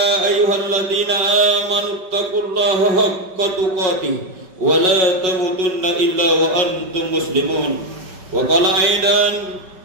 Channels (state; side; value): late; left; 5.5 ms